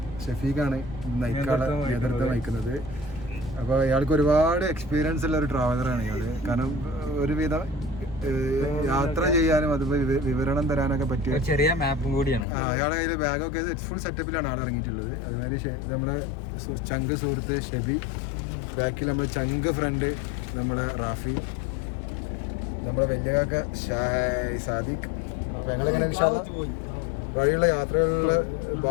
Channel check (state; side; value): drops out; right; at 12.5 s